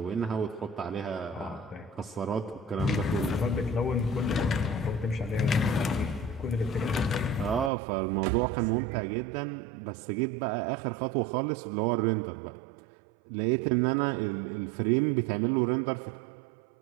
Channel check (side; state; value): left; drops out; at 7.7 s